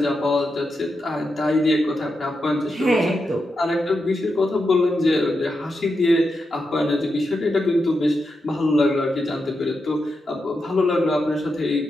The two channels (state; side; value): normal; both; correlation 0.87